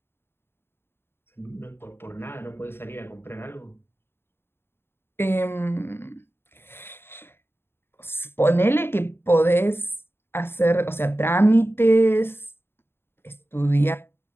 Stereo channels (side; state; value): right; late; 0.11 ms